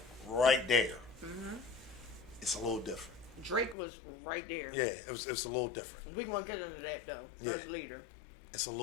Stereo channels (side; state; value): right; drops out; at 3.8 s